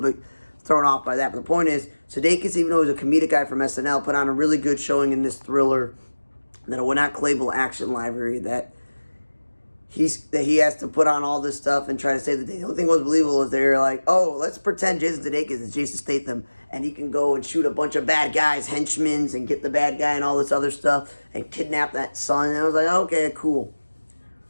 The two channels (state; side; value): inverted; both; correlation -1.00